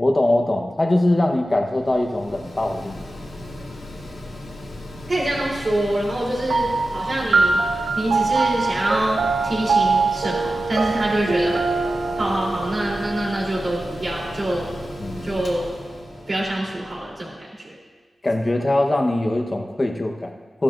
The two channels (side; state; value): both; normal; correlation 0.93